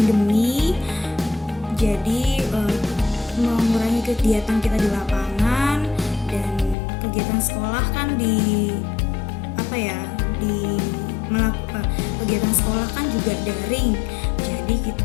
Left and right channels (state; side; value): drops out; right; at 6.8 s